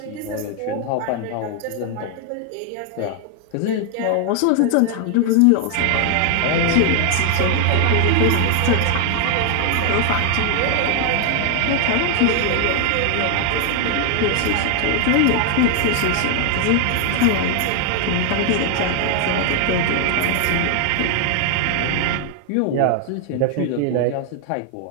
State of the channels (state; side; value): different; both; correlation 0.00